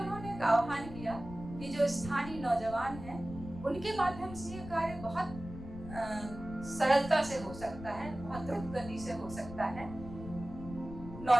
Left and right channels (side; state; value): left; noise; rumble, 12 dB below the sound